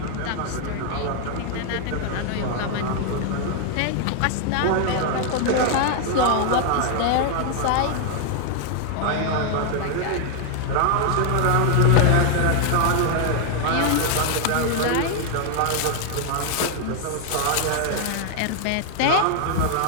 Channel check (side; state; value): both; different; correlation 0.00